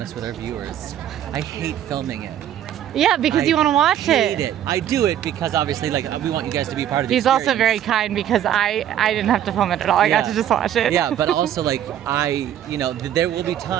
with our viewers. I hate filming it. Yeah, because you want to watch I hate it. I do it because obviously, like, we want you guys to be part of the He's experience. also very kind because I didn't have to film it at all. I got to just watch it. Yeah, but also, like, there will be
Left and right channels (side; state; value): left; quieter; 10.8 dB